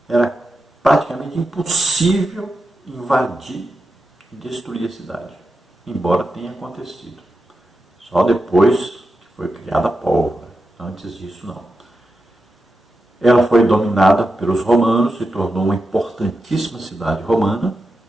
era praticamente impossível invadir e destruir a cidade, embora tenha acontecido. Só depois que foi criada a pólvora, antes disso não. Ela foi dominada pelos romanos, se tornou uma importantíssima cidade romana,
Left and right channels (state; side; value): normal; both; correlation 0.89